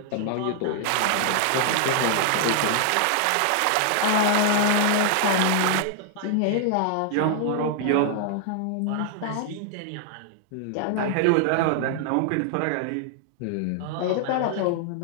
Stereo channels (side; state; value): both; different; correlation -0.01